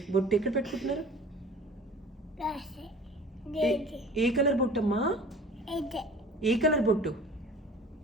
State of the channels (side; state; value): both; normal; correlation 0.44